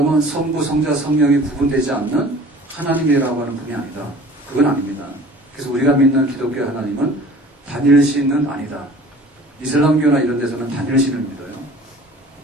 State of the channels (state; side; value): normal; both; correlation 0.46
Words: 성부, 성자, 성령이 구분되지 않는 하나님이라고 하는 분이 아니다. 그건 아닙니다. 그래서 우리가 믿는 기독교 하나님은 단일신은 아니다. 이슬람교나 이런 데서는 단일신을 믿어요.